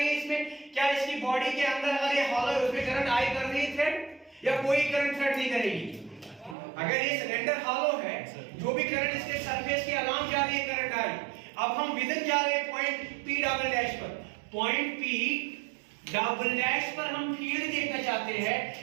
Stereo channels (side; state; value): left; drops out; at 6.6 s